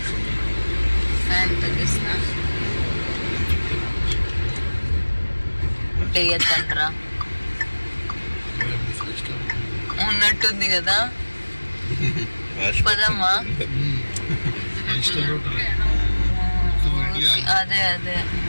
ఉన్నట్టుంది కదా, పదమ్మా. అదే అదే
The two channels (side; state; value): both; inverted; correlation -1.00